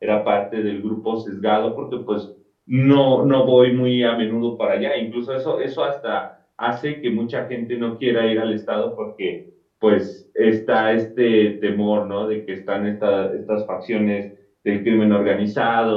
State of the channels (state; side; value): identical; both; correlation 1.00